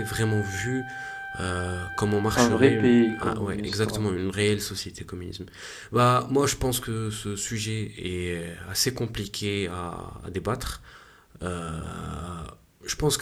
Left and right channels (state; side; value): identical; both; correlation 1.00